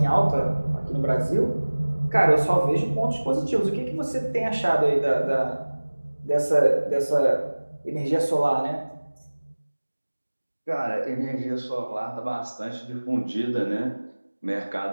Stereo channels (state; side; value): inverted; both; correlation -1.00